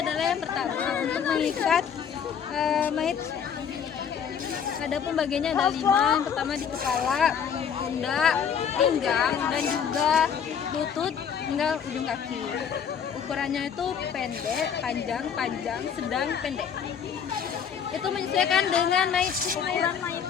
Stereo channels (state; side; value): quieter; right; 7.6 dB